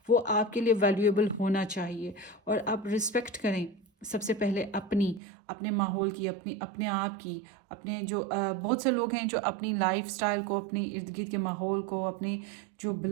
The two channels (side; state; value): left; drops out; at 5.2 s